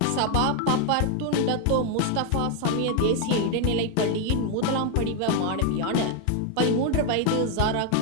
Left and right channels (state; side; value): different; both; correlation 0.01